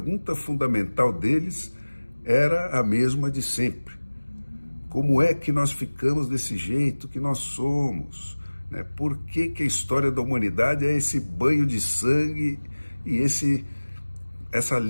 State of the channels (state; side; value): inverted; both; correlation -1.00